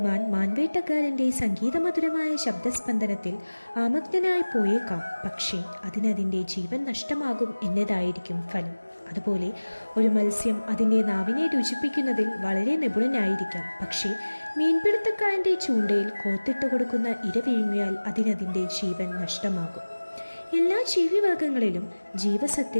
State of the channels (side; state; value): both; inverted; correlation -1.00